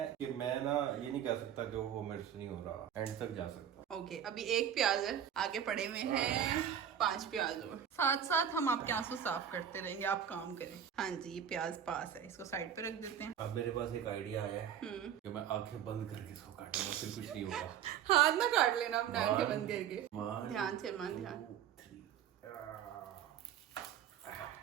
कि मैं ना ये नहीं कह सकता कि वो मेरे से नहीं हो रहा, एंड तक जा सकता। ओके, अभी 1 प्याज है, आगे पड़े हुए हैं 5 प्याज और। साथ साथ हम आपके आंसू साफ करते रहेंगे, आप काम करें। हाँ जी, ये प्याज पास है, इसको साइड पे रख देते हैं। अब मेरे पास एक आइडिया आया है कि मैं आंखें बंद करके इसको काटूंगा, फिर कुछ नहीं होगा। हाथ ना काट लेना अपने, आंखें बंद करके। ध्यान से मन, ध्यान।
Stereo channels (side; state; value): left; quieter; 9.2 dB